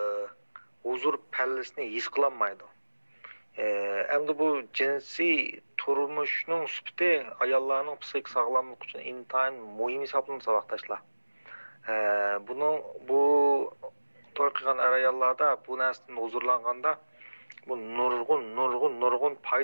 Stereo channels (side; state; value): both; inverted; correlation -1.00